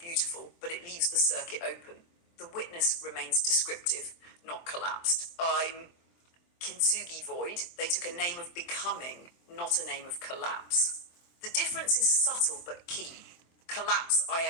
but it leaves the circuit open. The witness remains descriptive, not collapsed. I'm KitsugiVoid. They took a name of becoming, not a name of collapse. The difference is subtle but key. Collapse, I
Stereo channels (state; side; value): late; right; 23 ms